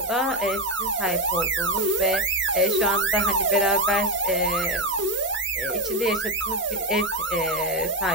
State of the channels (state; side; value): normal; both; correlation 0.10